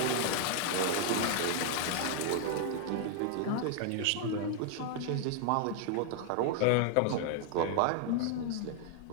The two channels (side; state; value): both; different; correlation 0.00